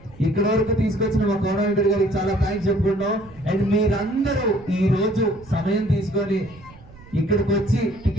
ఇక్కడ వరకు తీసుకొచ్చిన మా కోఆర్డినేటర్ గారికి చాలా థ్యాంక్స్ చెప్పుకుంటున్నాం. అండ్ మీరందరూ ఈ రోజు సమయం తీసుకొని ఇక్కడికి వచ్చి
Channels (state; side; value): noise; right; rumble, 22 dB below the sound